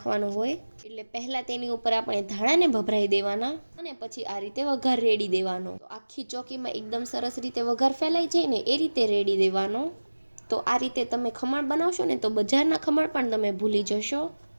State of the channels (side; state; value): both; inverted; correlation -1.00